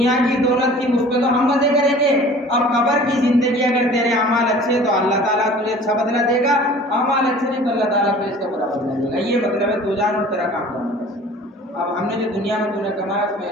کی دولت کی مجھ پہ تو ہم مزے کریں گے، اب قبر کی زندگی اگر تیرے اعمال اچھے تو اللہ تعالیٰ تجھے اچھا بدلہ دے گا، اعمال اچھے نہیں تو اللہ تعالیٰ تجھے اس کا برا بدلہ دے گا۔ یہ مطلب ہے تو جان اور تیرا کام جانے۔ اب ہم نے جو دنیا میں تو نے کمایا اس میں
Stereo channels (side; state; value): both; normal; correlation 0.46